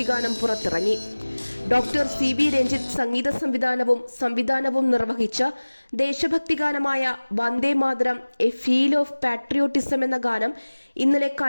ഗാനം പുറത്തിറങ്ങി. Doctor CV. രഞ്ജിത്ത് സംവിധാനവും നിർവഹിച്ച ദേശഭക്തി ഗാനമായ Vande Mataram a feel of patriotism എന്ന ഗാനം ഇന്നലെ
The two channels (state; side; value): inverted; both; correlation -1.00